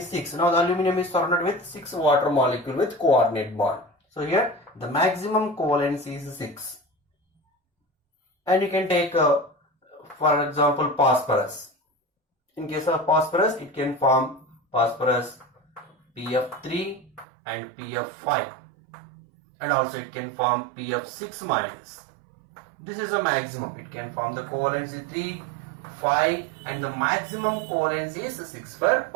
6. Now the aluminum is surrounded with 6 water molecule with coordinate bond. So here the maximum covalency is 6. And you can take for example phosphorus. In case of phosphorus, it can form phosphorus PF3 and PF5. And also it can form PF6 minus. This is a maximum. It can form the covalency 3, 5 and the maximum covalency is 6 for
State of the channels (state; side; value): drops out; left; at 17.2 s